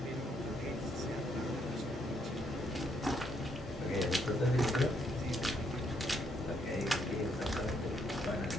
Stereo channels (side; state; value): both; normal; correlation 0.73